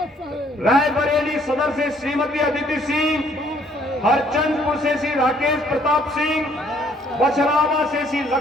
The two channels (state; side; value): normal; both; correlation 0.63